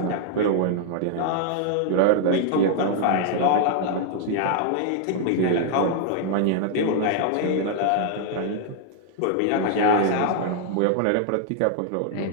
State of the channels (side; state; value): both; different; correlation 0.00